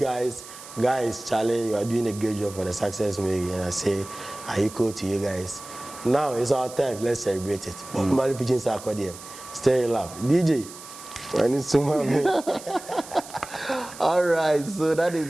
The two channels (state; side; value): noise; right; hiss, 15 dB below the sound